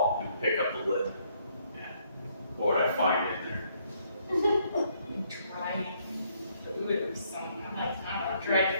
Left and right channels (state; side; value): inverted; both; correlation -0.69